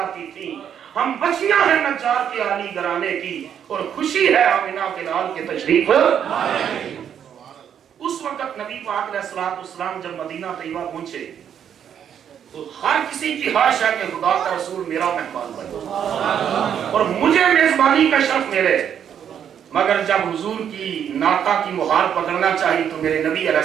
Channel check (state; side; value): quieter; left; 8.8 dB